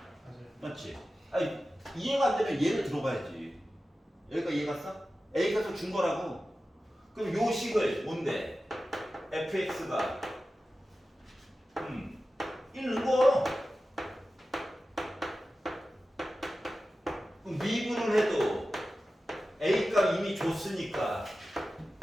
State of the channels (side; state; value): both; normal; correlation 0.94